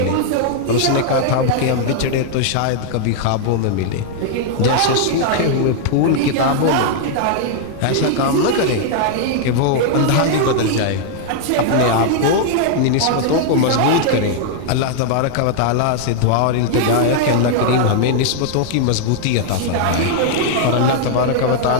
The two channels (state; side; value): different; both; correlation 0.00